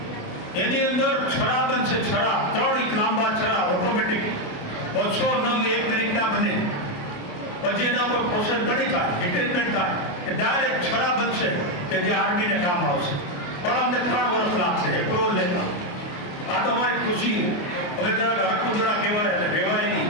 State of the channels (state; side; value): late; right; 28 ms